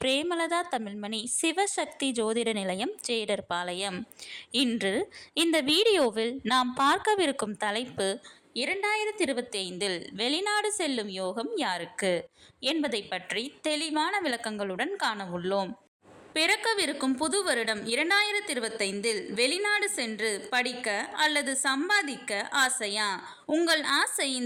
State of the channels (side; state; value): both; identical; correlation 1.00